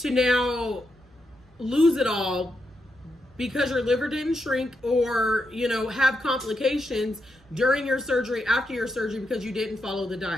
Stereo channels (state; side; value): normal; both; correlation 0.83